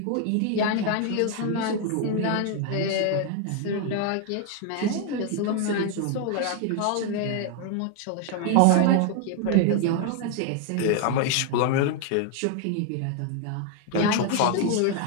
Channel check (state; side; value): different; both; correlation 0.00